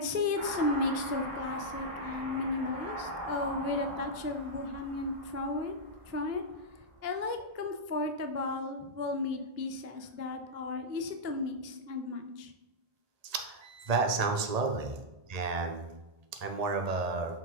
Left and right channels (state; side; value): late; left; 1.8 ms